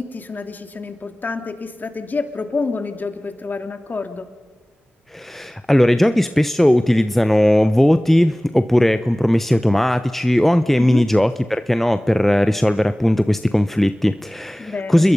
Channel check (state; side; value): normal; both; correlation 0.98